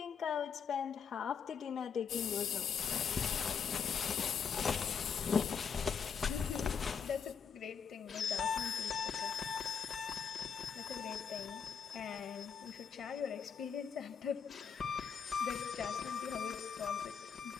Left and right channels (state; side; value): quieter; right; 6.8 dB